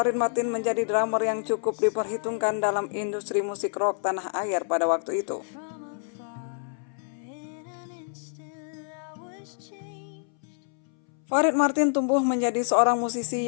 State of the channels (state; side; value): silent; right; 60 dB below the other